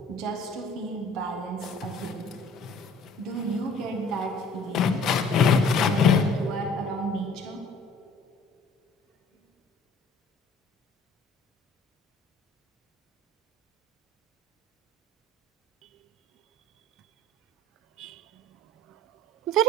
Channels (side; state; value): both; normal; correlation 0.51